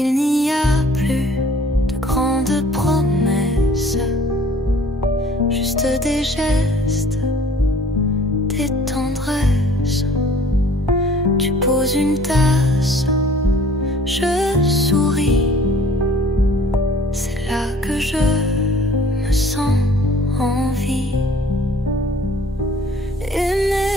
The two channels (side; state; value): both; normal; correlation 0.53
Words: n'y a plus de grandes promesses, juste des gestes, des tendresses. Tu poses une tasse, je souris. C'est là que je me sens en vie.